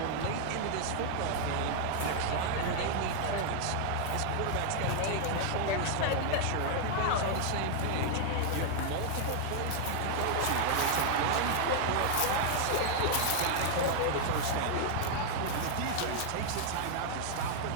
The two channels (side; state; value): both; different; correlation 0.00